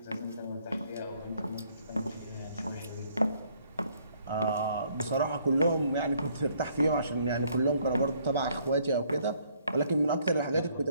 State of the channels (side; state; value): both; inverted; correlation -0.65